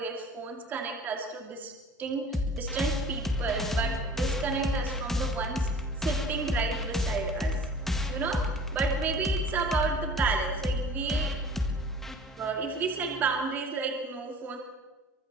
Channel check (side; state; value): both; normal; correlation 0.46